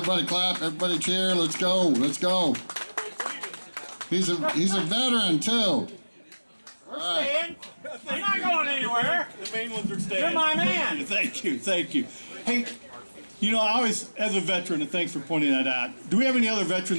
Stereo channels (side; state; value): both; inverted; correlation -1.00